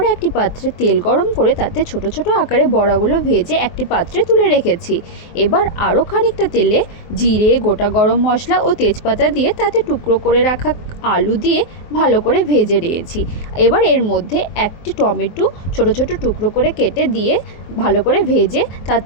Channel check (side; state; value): right; late; 24 ms